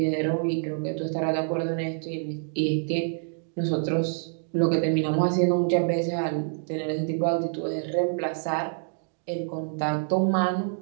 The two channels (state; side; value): silent; left; digital silence